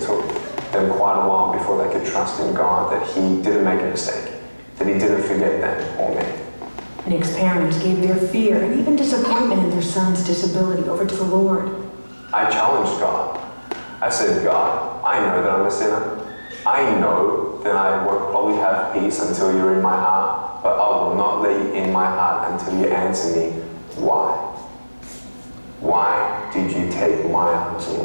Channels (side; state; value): both; inverted; correlation -1.00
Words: took them quite a while before they could trust in God that He didn't make a mistake, that He didn't forget them or me. Nick's parents gave their fear and even disappointment in their son's disability over to the Lord. I challenged God. I said, God, I know that I'm a sinner. I know that I won't probably have peace until you're in my heart, but I will not let you in my heart until you answer me, why? Why did you take my arms and